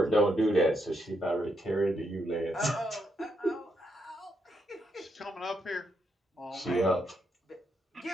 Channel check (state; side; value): normal; both; correlation 0.79